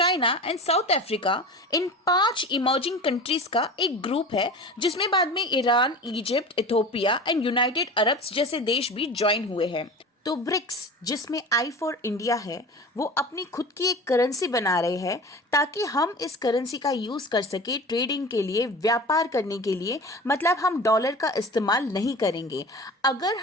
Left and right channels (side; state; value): both; normal; correlation 0.35